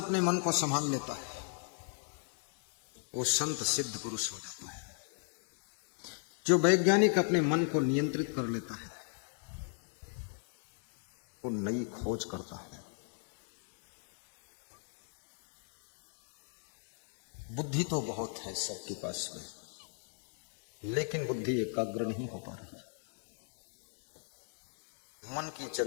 मन को संभाल लेता है वो संत सिद्ध पुरुष हो जाता है। जो वैज्ञानिक अपने मन को नियंत्रित कर लेता है वो नई खोज करता है। बुद्धि तो बहुत है सबके पास में, लेकिन बुद्धि एकाग्र नहीं हो पा रही। मन की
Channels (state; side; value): silent; right; 53 dB below the other